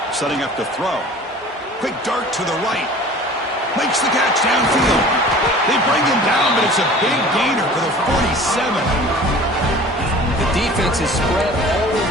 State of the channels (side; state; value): both; normal; correlation 0.44